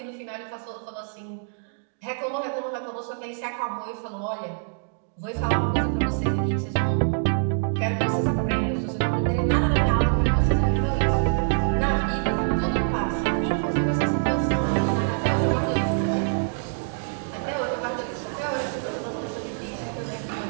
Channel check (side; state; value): left; silent; digital silence